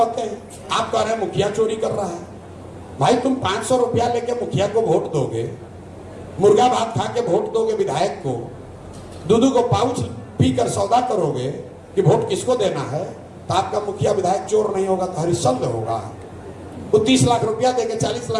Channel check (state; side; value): identical; both; correlation 1.00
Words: हैं, आप कह रहे हैं मुखिया चोरी कर रहा है। भाई तुम 500 रुपया लेके मुखिया को वोट दोगे, मुर्गा भात खा के वोट दोगे विधायक को, दूध को पाउच पीकर सौदा करोगे कि वोट किसको देना है, तो आपका मुखिया विधायक चोर नहीं होगा तो हरिश्चंद्र होगा। वो 30 लाख रुपया देके 40